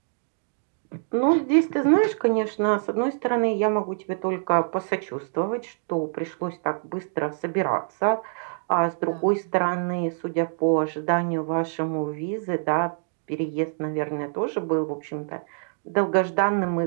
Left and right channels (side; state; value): left; silent; digital silence